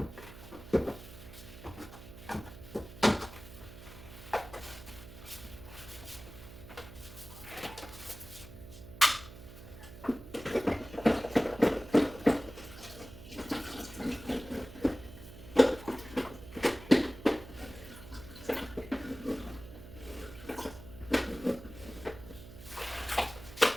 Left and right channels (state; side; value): noise; right; hum, 15 dB below the sound